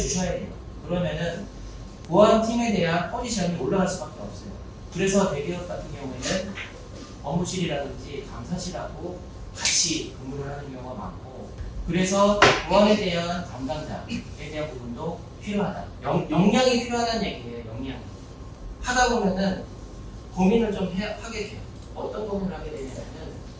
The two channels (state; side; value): identical; both; correlation 1.00